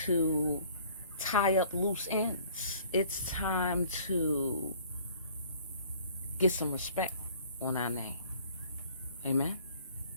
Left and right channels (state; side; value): inverted; both; correlation -0.54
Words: to tie up loose ends. It's time to get some respect on our name. Amen?